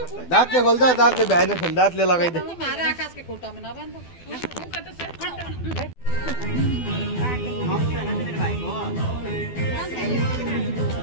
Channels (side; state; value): right; late; 12 ms